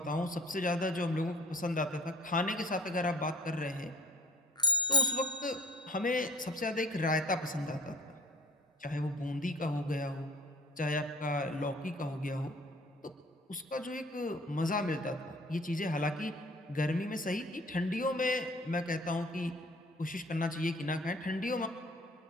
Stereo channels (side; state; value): both; normal; correlation 0.51